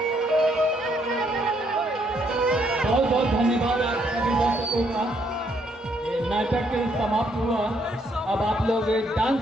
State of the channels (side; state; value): both; normal; correlation 0.71